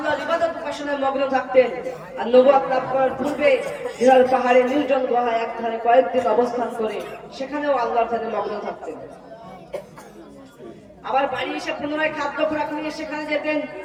ইবাদত উপাসনায় মগ্ন থাকতেন। আর নবুয়ত লাভ করার পূর্বে হিরাল পাহাড়ে নির্জন গুহায় একধারে কয়েকদিন অবস্থান করে সেখানেও আল্লাহর ধারে মগ্ন থাকতেন। আবার বাড়ি এসে পুনরায় খাদ্য খোরাক নিয়ে সেখানে যেতেন।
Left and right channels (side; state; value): both; identical; correlation 1.00